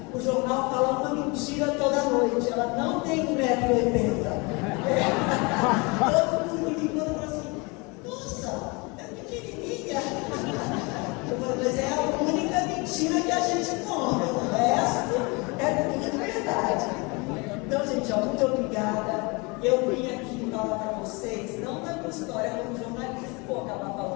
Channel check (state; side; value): quieter; right; 28.2 dB